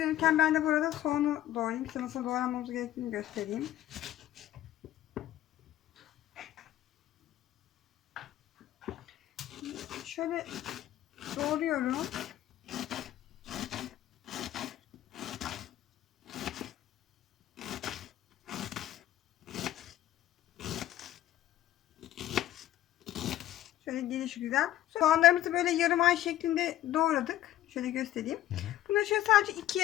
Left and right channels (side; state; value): right; quieter; 13.6 dB